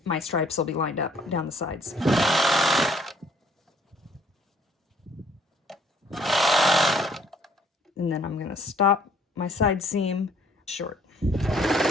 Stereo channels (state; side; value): normal; both; correlation 0.61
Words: my stripes will be lined up down the sides. And then I'm going to stop my side seam short.